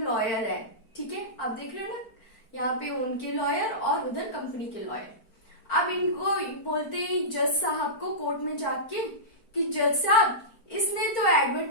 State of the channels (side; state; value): right; late; 4.5 ms